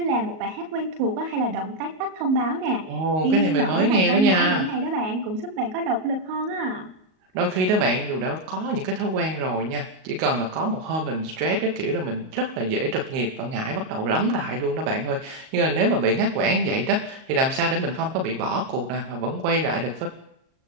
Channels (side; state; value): left; late; 38 ms